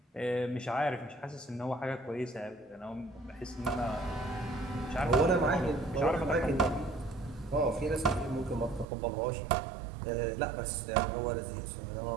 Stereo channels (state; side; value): drops out; left; at 8.8 s